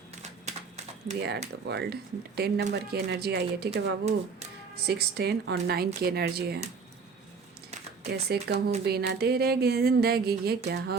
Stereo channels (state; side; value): quieter; left; 5.1 dB